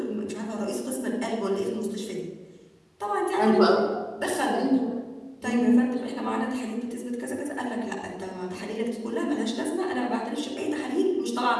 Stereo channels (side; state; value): both; identical; correlation 1.00